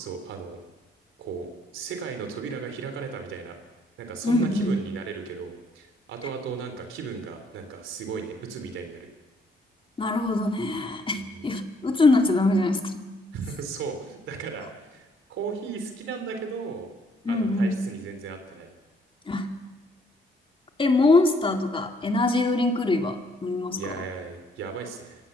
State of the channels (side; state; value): both; normal; correlation 0.67